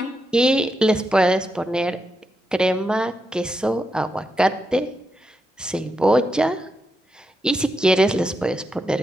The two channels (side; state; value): both; normal; correlation 0.85